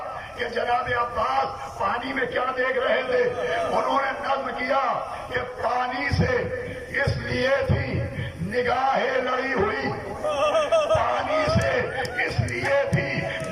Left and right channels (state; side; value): identical; both; correlation 1.00